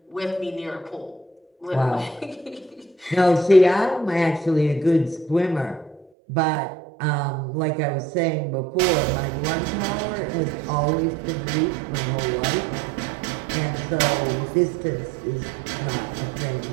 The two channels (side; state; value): left; drops out; at 6.1 s